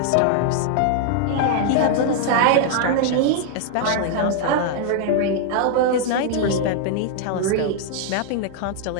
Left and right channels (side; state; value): both; different; correlation 0.00